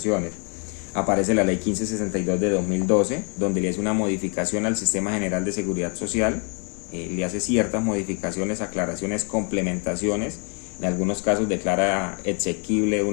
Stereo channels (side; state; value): right; quieter; 37.9 dB